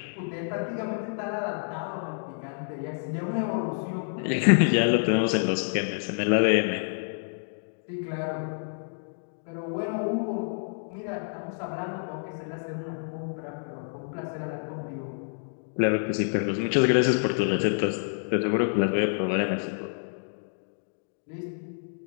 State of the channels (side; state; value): right; silent; digital silence